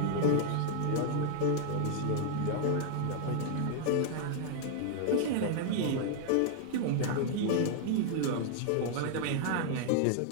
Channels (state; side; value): different; both; correlation 0.00